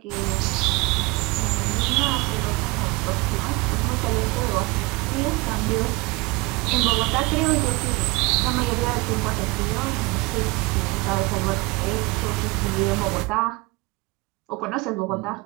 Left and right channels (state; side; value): quieter; left; 24.2 dB